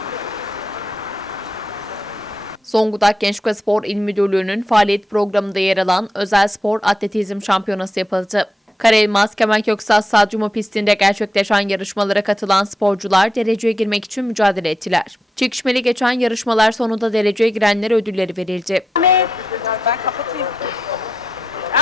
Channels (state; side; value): normal; both; correlation 0.86